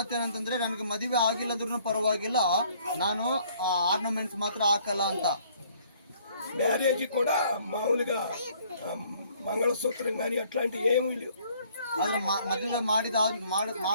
ನನಗೆ ಮದುವೆ ಆಗಿಲ್ಲದ್ರೂ ಪರವಾಗಿಲ್ಲ, ನಾನು ಆರ್ನಮೆಂಟ್ಸ್ ಮಾತ್ರ ಹಾಕಲ್ಲ ಅಂತ. మ్యారేజ్ కూడా మామూలుగా మంగళసూత్రం కానీ అట్లాంటివి ఏమీ లేవు. ಆದ್ರೆ ಮದುವೆ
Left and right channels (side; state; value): both; inverted; correlation -0.61